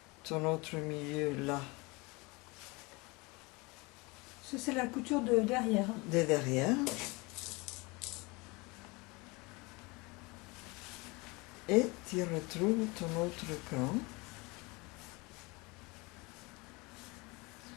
ton autre milieu là, Ça, c'est la couture de derrière. de derrière. Et tu retrouves ton autre cran.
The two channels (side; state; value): right; quieter; 25.8 dB